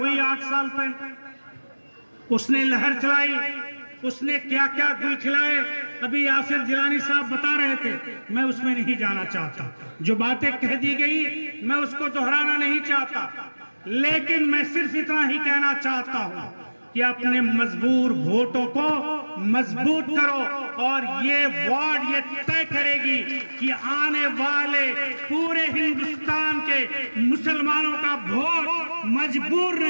8 साल पहले, उसने लहर चलाई, उसने क्या क्या गुल खिलाए। अभी यासिर जिलानी साहब बता रहे थे, मैं उसमें नहीं जाना चाहता, जो बातें कह दी गई मैं उसको दोहराना नहीं चाहता, लेकिन मैं सिर्फ इतना ही कहना चाहता हूं कि अपने मजबूर वोटों को मजबूत करो और ये वार्ड ये तय करेगी कि आने वाले पूरे हिंदुस्तान के मुसलमानों का वोट मजबूर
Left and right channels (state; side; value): inverted; both; correlation -1.00